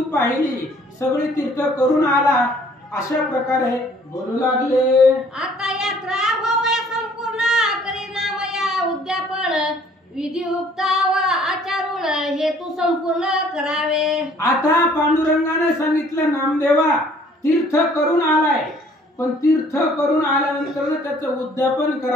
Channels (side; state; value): both; normal; correlation 0.58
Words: पाहिली, सगळी तीर्थ करून आला, अशा प्रकारे बोलू लागले. आता यात्रा होऊया संपूर्ण, करी नामया उद्यापन, विधियुक्त व आचारून, हे तू संपूर्ण करावे. आता पांडुरंगाने सांगितलं, नामदेवा तीर्थ करून आलाय, पण तीर्थ करून आल्यानंतर त्याचं उद्यापन